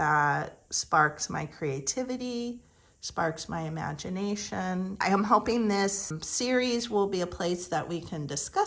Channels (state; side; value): identical; both; correlation 1.00